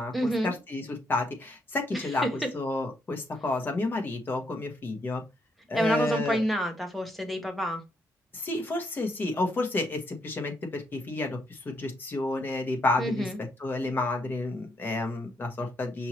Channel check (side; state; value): both; normal; correlation 0.75